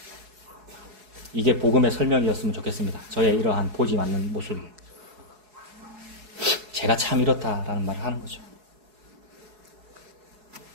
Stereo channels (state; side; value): late; left; 4.7 ms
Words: 이게 복음의 설명이었으면 좋겠습니다. 저의 이러한 보지 않는 모습이. 제가 참 이렇다라는 말을 하는 거죠.